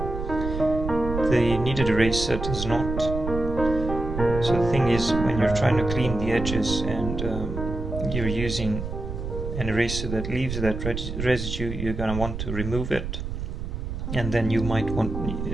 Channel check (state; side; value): noise; right; rumble, 5 dB below the sound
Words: The kneaded eraser does not. So the thing is, when you're trying to clean the edges and you're using an eraser that leaves that residue, you're going to want to remove it, and then you